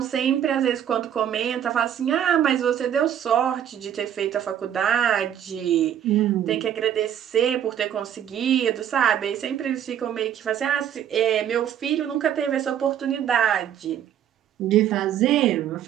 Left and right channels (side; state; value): left; quieter; 9.9 dB